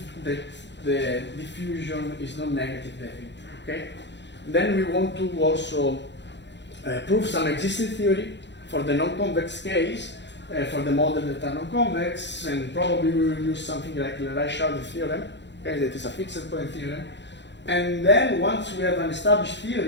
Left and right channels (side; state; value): right; late; 0.52 ms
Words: that the diffusion is non-negative definite. Okay. Then we want to also prove some existing theory for the non-convex case, for the model that are non-convex, and probably we will use something like the Reichardt theorem, okay, that is a fixed point theorem. And then once we have an established